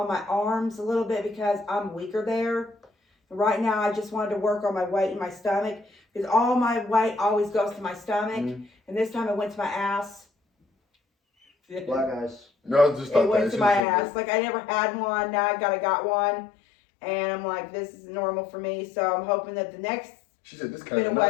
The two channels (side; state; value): right; drops out; at 13.9 s